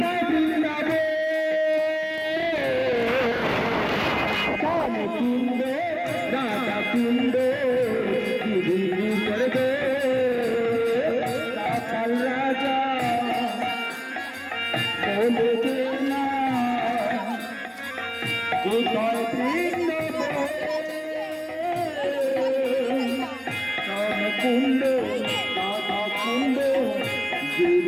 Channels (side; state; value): both; identical; correlation 1.00